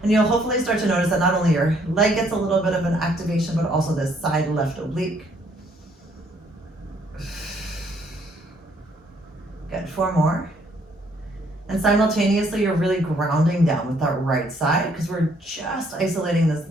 And you'll hopefully start to notice that not only your leg gets a little bit of an activation, but also this side left oblique. Good, 4 more. And simultaneously, you're really grounding down with that right side because we're just isolating this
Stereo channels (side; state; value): both; normal; correlation 0.66